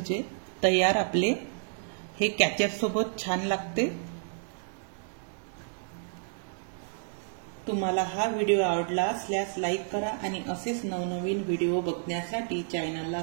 तयार आपले। हे कॅचअप सोबत छान लागते। तुम्हाला हा व्हिडिओ आवडला असल्यास लाईक करा आणि असेच नवनवीन व्हिडिओ बघण्यासाठी चॅनलला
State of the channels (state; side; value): silent; left; 58 dB below the other